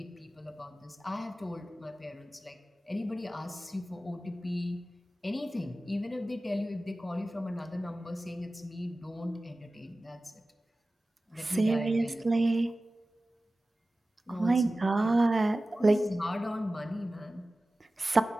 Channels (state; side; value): normal; both; correlation 0.96